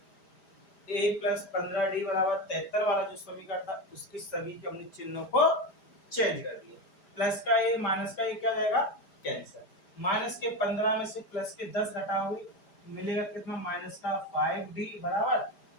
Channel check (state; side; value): late; right; 5.0 ms